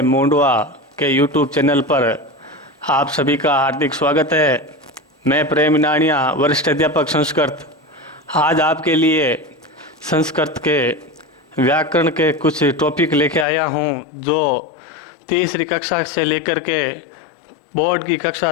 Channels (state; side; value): drops out; right; at 13.5 s